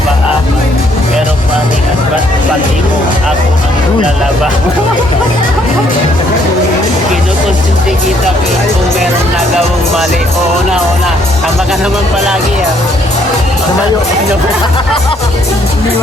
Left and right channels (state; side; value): normal; both; correlation 0.67